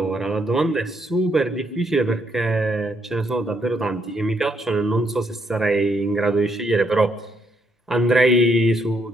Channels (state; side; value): normal; both; correlation 0.74